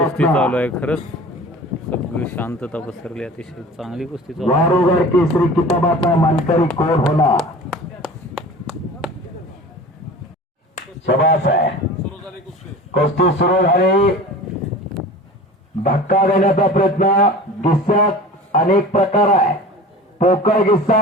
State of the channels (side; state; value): both; normal; correlation 0.38